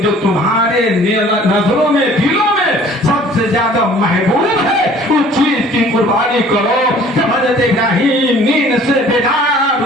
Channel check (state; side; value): normal; both; correlation 0.52